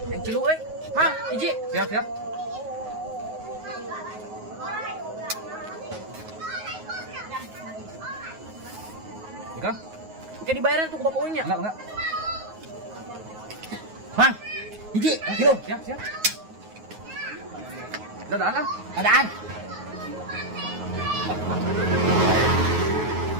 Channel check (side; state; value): left; late; 9.4 ms